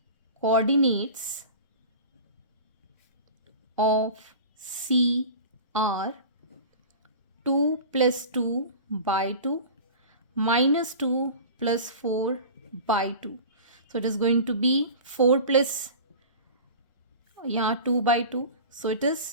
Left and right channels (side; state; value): both; inverted; correlation -0.36